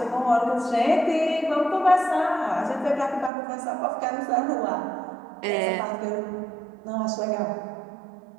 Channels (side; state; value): left; drops out; at 3.3 s